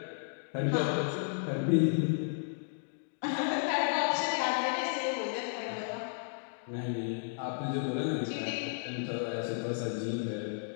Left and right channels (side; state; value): right; silent; digital silence